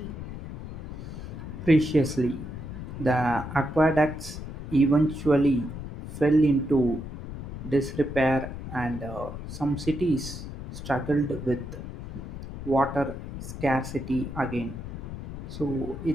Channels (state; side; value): noise; left; rumble, 9 dB below the sound